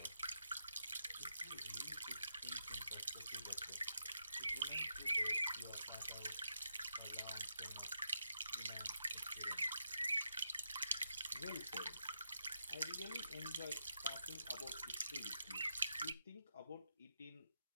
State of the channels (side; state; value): both; inverted; correlation -0.84